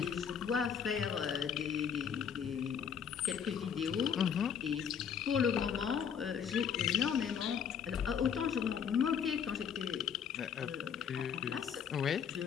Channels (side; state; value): right; quieter; 7.6 dB